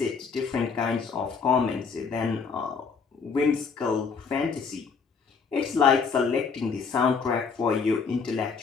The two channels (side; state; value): right; quieter; 5.5 dB